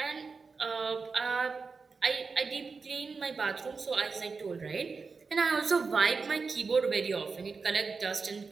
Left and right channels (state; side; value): quieter; left; 4.7 dB